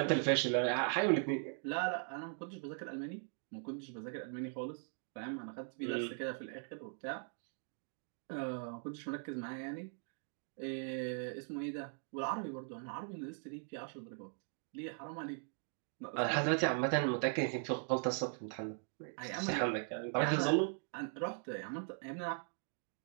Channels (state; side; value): silent; left; 51 dB below the other